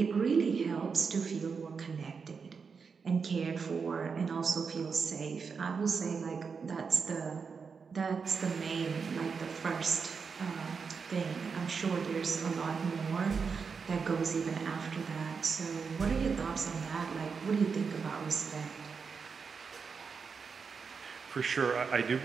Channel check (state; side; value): quieter; left; 5.5 dB